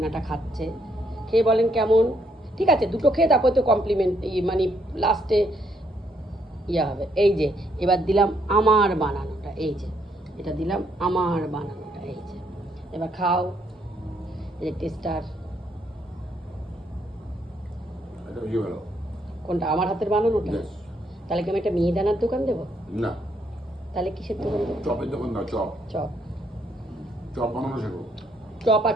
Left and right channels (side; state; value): both; normal; correlation 0.72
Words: খাচ্ছে, খেয়ে বলেন কেমন। ঠিক আছে, দুটো খেয়ে তারপরে তো কমপ্লিমেন্ট মানে লাস্টে ইয়ে হবে। এই যে এবার দিলাম আমার বানানোটা, এই যে এটা দিলাম আমার বানানোটা, এই যে এবার খাও। এই যে টেস্টার কোনটা? আমার হাতের বানানোটা। তাহলে কি আমি একটা মিহিদানার দোকান দেবো? না, তাহলে কিসের দোকান দেবো? চপের দোকান দাও। Chop chop. চপ বানানো শেখো। চপ আর